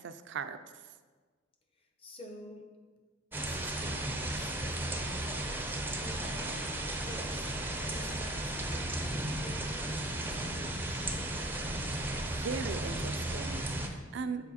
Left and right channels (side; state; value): both; normal; correlation 0.46